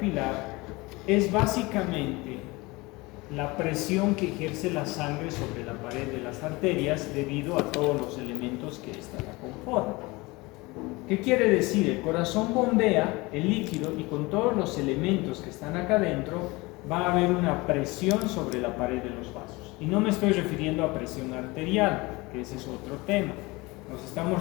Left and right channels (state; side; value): quieter; right; 23.3 dB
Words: es básicamente la presión que ejerce la sangre sobre la pared de las arterias debido a todos los elementos que ésta la conforman. ¿Qué quiere decir? El corazón bombea el líquido y con todos los elementos que están acá adentro va a haber una presión sobre la pared de los vasos. Y no me estoy refiriendo a presión arterial, que ese es otro tema. Nos estamos